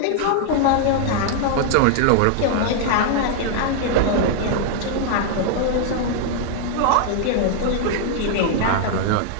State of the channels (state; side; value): different; both; correlation 0.00